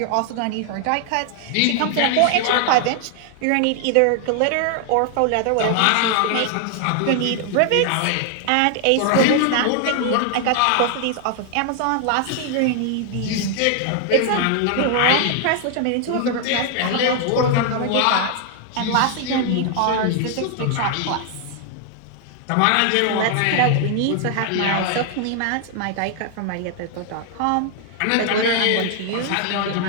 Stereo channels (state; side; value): different; both; correlation 0.00